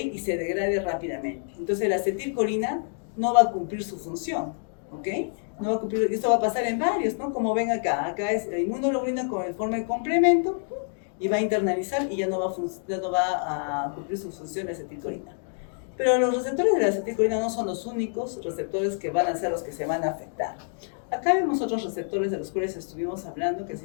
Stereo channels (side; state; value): right; silent; digital silence